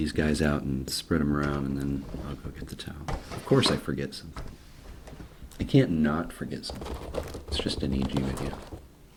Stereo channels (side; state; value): both; identical; correlation 1.00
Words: guys out and spread them around, and then I'll go get the towel. Of course I forget something. I can't not forget something. It's just an EG video.